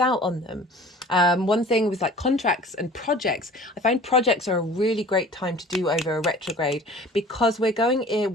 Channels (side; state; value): both; normal; correlation 0.45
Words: out on them. One thing with like contracts and projects, I find projects are a really great time to do over a retrograde, because we're going in,